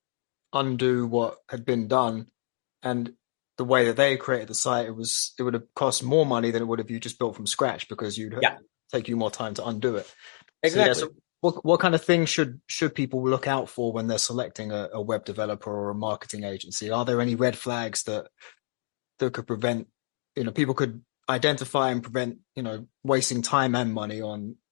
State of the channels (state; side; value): silent; right; digital silence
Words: undo what had been done, and the way that they created the site, it would have cost more money than it would have you just built from scratch, because you'd take you more time to undo it. Exactly. So, what kind of things should people look out for when they're selecting a web developer or a marketing agency? Are there any red flags that could prevent, people could identify and prevent, wasting time and money on